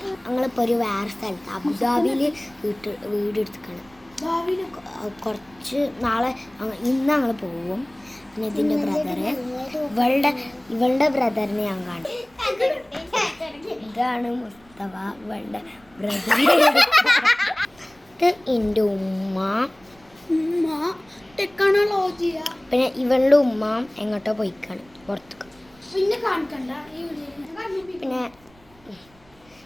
ഞങ്ങളിപ്പോൾ വേറെ സ്ഥലത്ത് അബുദാബിയിൽ വീടെടുത്തിക്കണം. കുറച്ച് നാളെ ഇന്ന് ഞങ്ങൾ പോവും. പിന്നെ ഇതിൻ്റെ ബ്രദറ് ഇവളുടെ ബ്രദറിനെ ഞാൻ കാണും. ഇതാണ് മുസ്തഫ, ഇവളുടെ ബ്രദർ. ഇത് എൻ്റെ ഉമ്മ. പിന്നെ ഇവളുടെ ഉമ്മ എങ്ങോട്ടോ പോയിക്കാണ്, പുറത്തേക്ക്. പിന്നെ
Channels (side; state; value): right; noise; rumble, 29 dB below the sound